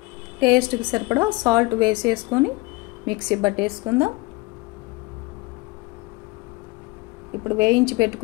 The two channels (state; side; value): quieter; right; 22.8 dB